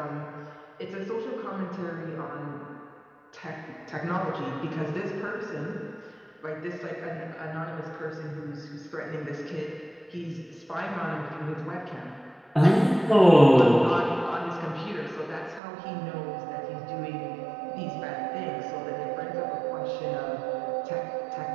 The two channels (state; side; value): drops out; left; at 15.6 s